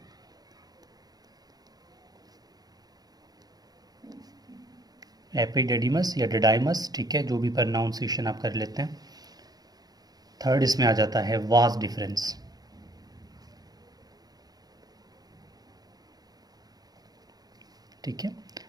एपिडिडीमस या डिडाइमस, ठीक है, जो भी प्रोनाउंसिएशन आप कर लेते हैं। थर्ड इसमें आ जाता है वास डिफरेंस। ठीक है,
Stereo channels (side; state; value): left; late; 0.19 ms